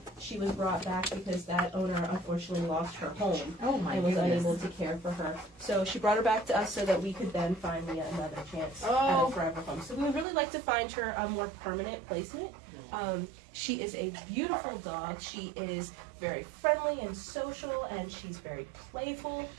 she was brought back because that owner unfortunately lost her home and was unable to care for her. So she brought her back to us so that we could then find Leah another chance at a forever home. So we would really like to find her a more permanent placement. She is a beautiful dog. She is very friendly and social, and she's very playful.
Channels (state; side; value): drops out; left; at 10.2 s